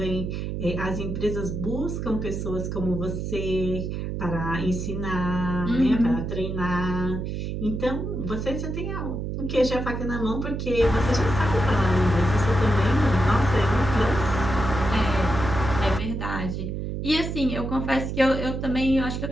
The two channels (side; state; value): right; noise; hum, 4 dB below the sound